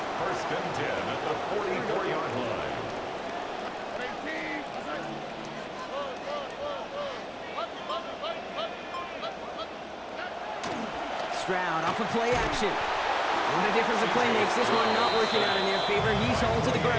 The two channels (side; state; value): both; identical; correlation 1.00